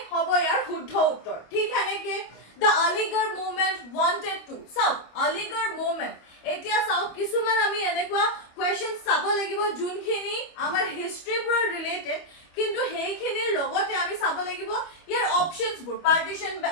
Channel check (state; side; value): late; right; 25 ms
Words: hobo yar শুদ্ধ উত্তৰ ঠিক है নেকি the Aligarh movement wanted to so Aligarh movement এতিয়া চাও কিছুমান আমি এনেকুৱা কোৱেশ্চন চাব লাগিব যোনখিনি আমাৰ হিষ্ট্ৰী পুৰা ৰিলেটেড কিন্তু হেইখিনিৰ লগতে আমি চাব লাগিব ইয়াৰ অপচনছ বোৰ partition